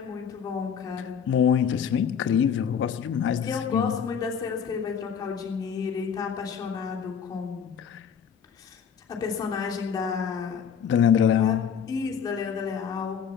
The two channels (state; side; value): quieter; right; 7.4 dB